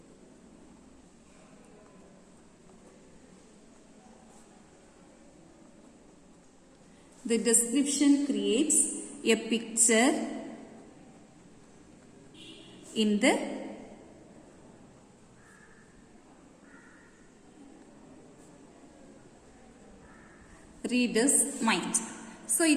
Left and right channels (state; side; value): identical; both; correlation 1.00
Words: The description creates a picture in the reader's mind. So